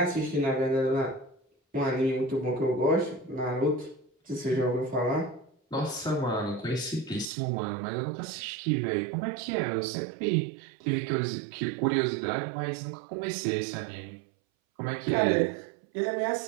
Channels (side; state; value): left; drops out; at 7.3 s